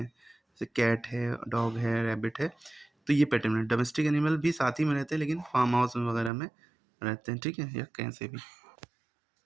जैसे कैट है, डॉग है, रैबिट है, तो ये पेट एनिमल। डोमेस्टिक एनिमल भी साथ ही में रहते हैं लेकिन फार्म हाउस वगैरह में रहते हैं, ठीक है, या कहीं से भी।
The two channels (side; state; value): left; drops out; at 6.3 s